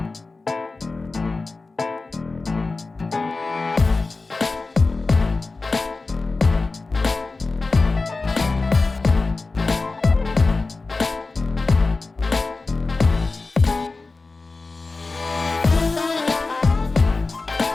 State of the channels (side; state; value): right; quieter; 3.7 dB